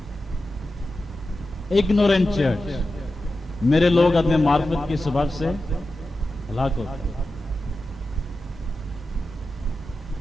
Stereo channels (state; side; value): normal; both; correlation 0.92